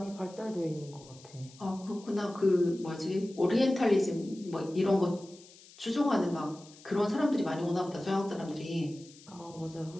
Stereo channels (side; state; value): left; noise; hiss, 22 dB below the sound